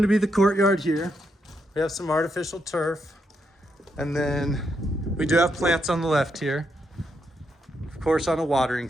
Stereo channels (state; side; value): normal; both; correlation 0.80